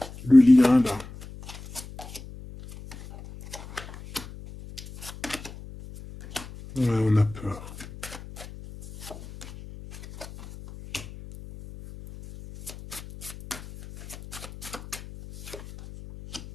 Le lien, là. Ouais, on a peur.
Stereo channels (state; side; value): noise; left; hum, 16 dB below the sound